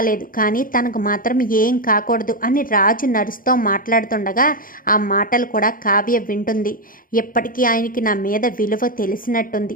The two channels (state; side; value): late; right; 0.40 ms